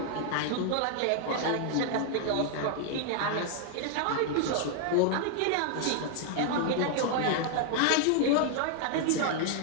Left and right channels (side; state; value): both; different; correlation 0.00